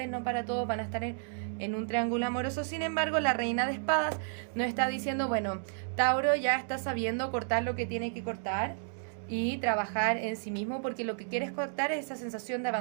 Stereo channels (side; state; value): left; silent; digital silence